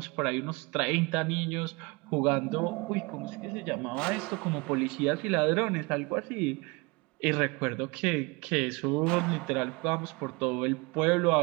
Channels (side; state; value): left; quieter; 26.9 dB